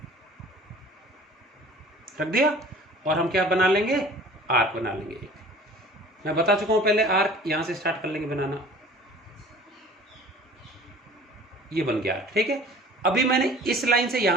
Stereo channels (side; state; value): both; normal; correlation 0.46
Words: रख दिया, और हम क्या बना लेंगे, आर्क बना लेंगे। मैं बता चुका हूं पहले, आर्क यहां से स्टार्ट कर लेंगे बनाना, ये बन गया, ठीक है। अभी मैंने इस लाइन से